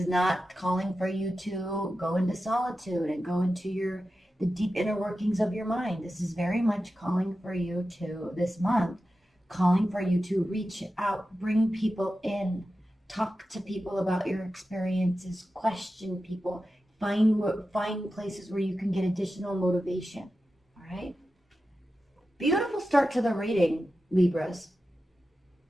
not calling for you to go into solitude and go into the deep inner workings of your mind. This is very much calling for you to, this month, calling for you to reach out, bring people in, talk to people about your experiences, question people, find places where you can get additional motivation. All right? Beautiful start to the reading, Libras.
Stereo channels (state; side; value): normal; both; correlation 0.92